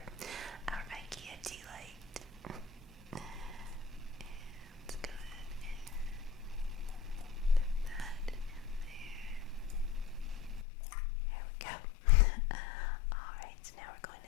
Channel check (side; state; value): right; drops out; at 10.7 s